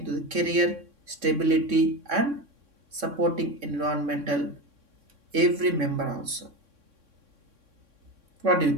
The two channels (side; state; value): left; late; 3.6 ms